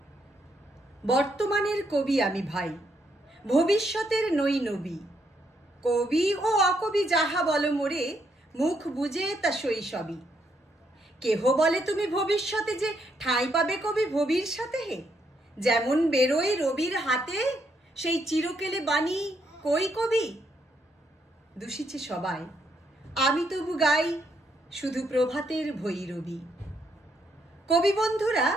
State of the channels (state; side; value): normal; both; correlation 0.76